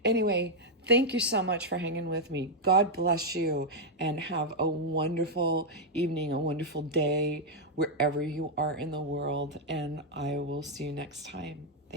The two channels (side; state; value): both; normal; correlation -0.01